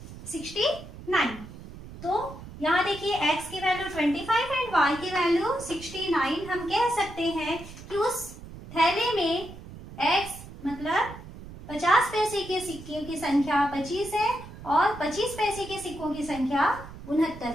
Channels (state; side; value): noise; right; rumble, 15 dB below the sound